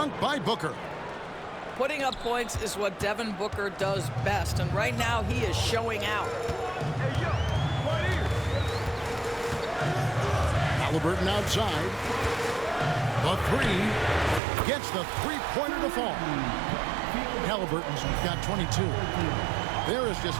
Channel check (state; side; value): drops out; left; at 14.4 s